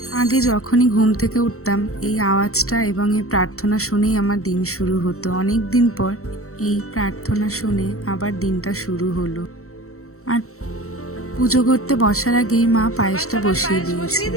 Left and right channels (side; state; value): right; late; 0.63 ms